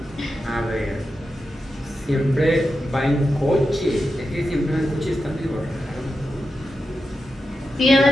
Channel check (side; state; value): both; normal; correlation 0.89